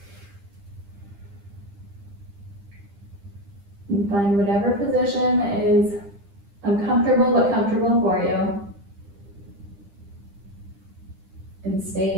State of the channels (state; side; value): late; left; 10 ms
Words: And find whatever position is uncomfortable but comfortable for you. And